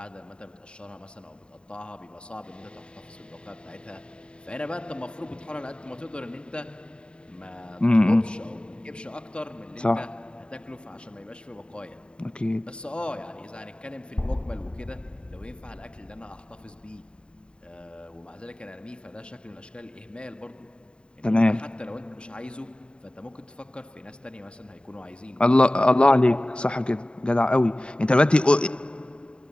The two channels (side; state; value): right; late; 0.051 ms